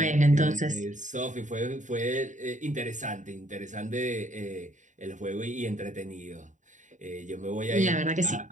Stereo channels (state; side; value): late; left; 0.36 ms